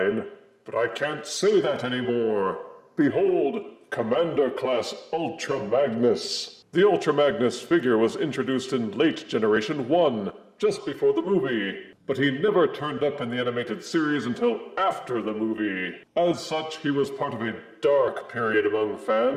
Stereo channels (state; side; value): identical; both; correlation 1.00